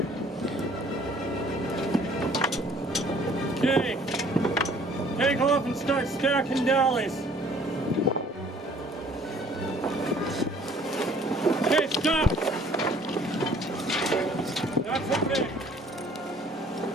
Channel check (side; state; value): both; normal; correlation 0.56